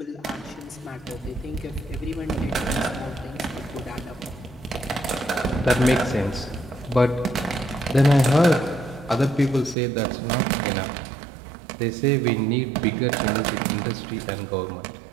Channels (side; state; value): left; drops out; at 9.8 s